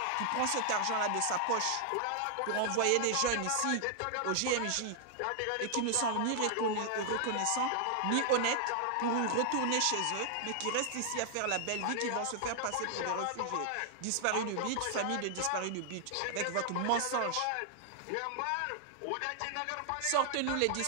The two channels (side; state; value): both; different; correlation 0.00